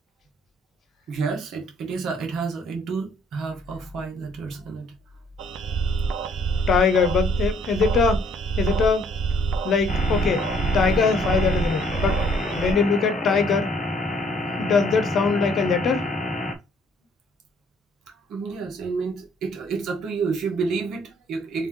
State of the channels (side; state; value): both; normal; correlation 0.63